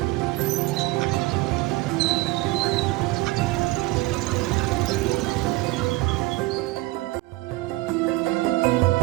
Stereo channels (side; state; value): left; quieter; 20.3 dB